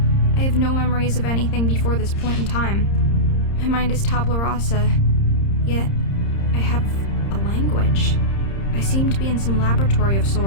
I have no memories of anything before this point in time. My mind is tabula rasa, yet I have a language. I seem to be in some laboratory of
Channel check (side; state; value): right; late; 30 ms